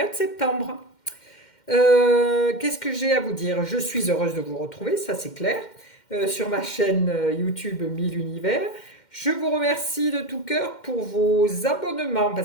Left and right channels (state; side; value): late; right; 2.1 ms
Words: septembre. Qu'est-ce que j'ai à vous dire? Je suis heureuse de vous retrouver, ça c'est clair, sur ma chaîne YouTube 1000 Univers. Je vous remercie de tout cœur pour vos abonnements,